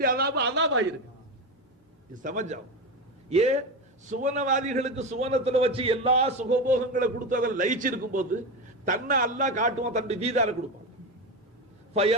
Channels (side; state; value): both; normal; correlation 0.18